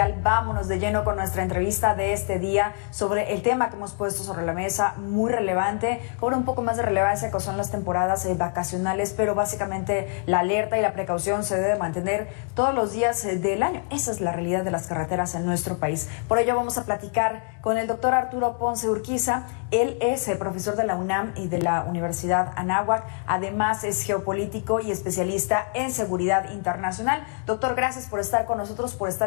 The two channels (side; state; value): right; quieter; 37.7 dB